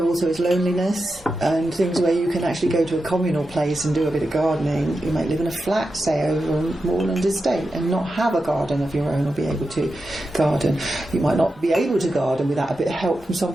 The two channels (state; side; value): normal; both; correlation 0.90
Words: also is loneliness, and things where you can actually go to a communal place and do a bit of gardening. You might live in a flat, say, over a moorland estate, and not have a garden of your own or be able to garden. You might not be able to garden without a bit of help from